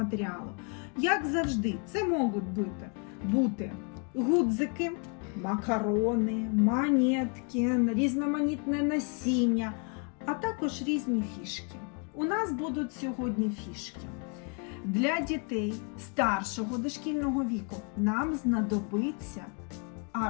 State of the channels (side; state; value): right; quieter; 36.8 dB